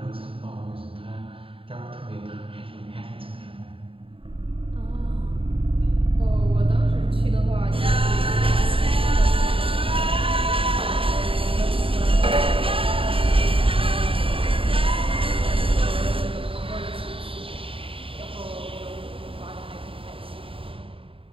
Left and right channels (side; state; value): left; late; 0.26 ms